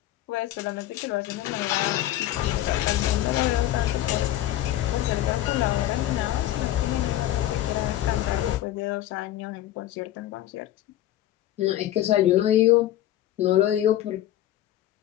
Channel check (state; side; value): quieter; right; 13.6 dB